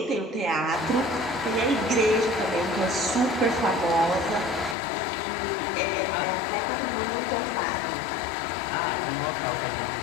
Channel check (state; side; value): drops out; right; at 4.8 s